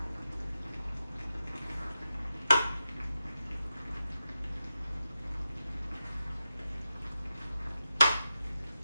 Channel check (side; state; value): both; inverted; correlation -0.90